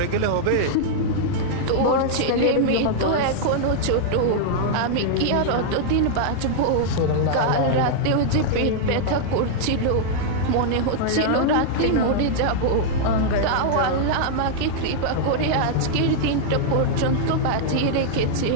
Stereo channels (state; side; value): different; both; correlation -0.01